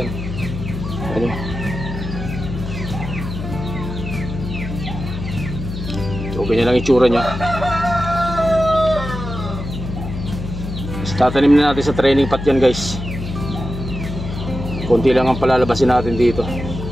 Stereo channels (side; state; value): left; noise; hum, 7 dB below the sound